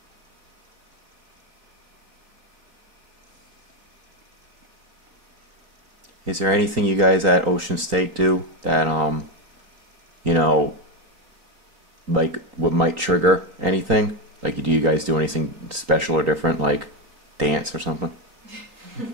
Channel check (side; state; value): left; late; 3.8 ms